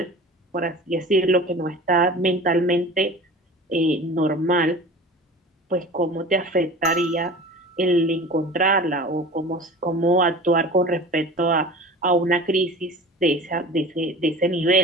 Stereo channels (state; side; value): normal; both; correlation 0.38